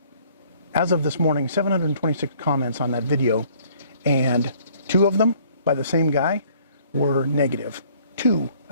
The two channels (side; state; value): both; inverted; correlation -0.59